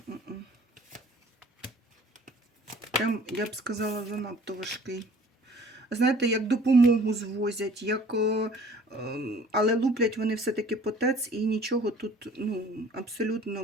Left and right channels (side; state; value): both; normal; correlation 0.51